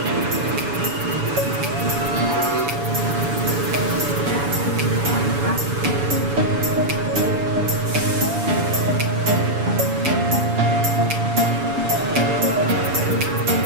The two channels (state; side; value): late; left; 7.1 ms